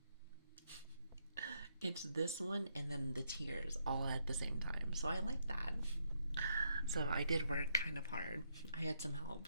It's this one and then the tears all at the same time. So I like that. So I did work kind of hard. I had some help.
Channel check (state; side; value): inverted; both; correlation -0.76